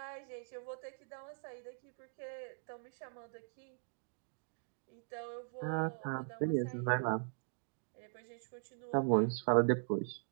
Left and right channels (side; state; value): left; silent; digital silence